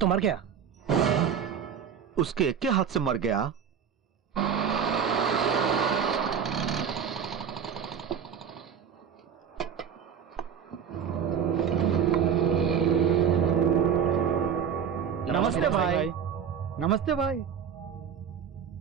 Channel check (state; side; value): quieter; left; 7.7 dB